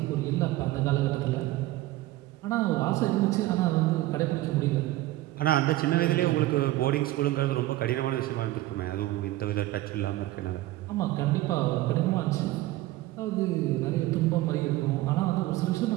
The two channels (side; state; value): left; quieter; 16.7 dB